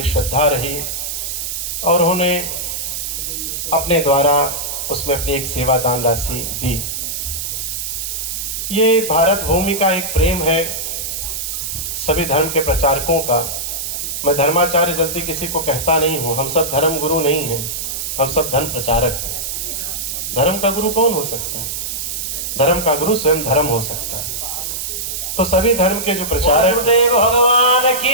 श्रद्धा रही और उन्होंने अपने द्वारा उसमें अपनी एक सेवादान राशि दी। ये भारत भूमि का एक प्रेम है सभी धर्म के प्रचारकों का। मैं धर्माचार्य जल्दी किसी को कहता नहीं हूँ, हम सब धर्म गुरु नहीं हैं, हम सब धर्म प्रचारक हैं। धर्म का गुरु कौन हो सकता है? धर्म का गुरु स्वयं धर्म हो सकता है। तो सभी धर्म के जो प्रचारक भगवान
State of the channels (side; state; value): right; noise; hiss, 4 dB below the sound